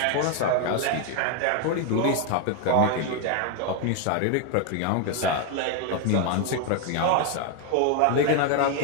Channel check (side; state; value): both; different; correlation 0.01